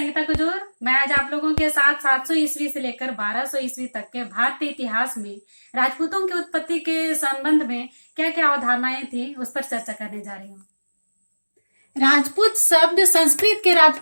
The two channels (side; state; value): both; inverted; correlation -1.00